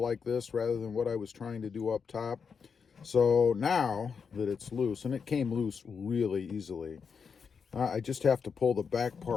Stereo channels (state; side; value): quieter; right; 6.0 dB